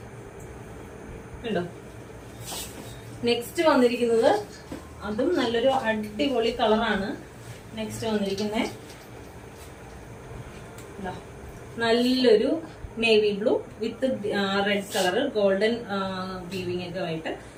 കണ്ടോ. നെക്സ്റ്റ് വന്നിരിക്കുന്നത് അതും നല്ലൊരു അടിപൊളി കളറാണ്. നെക്സ്റ്റ് വന്നിരിക്കുന്നത് നല്ലൊരു navy blue with red colour golden weaving ഒക്കെ ആയിട്ട്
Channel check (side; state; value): both; identical; correlation 1.00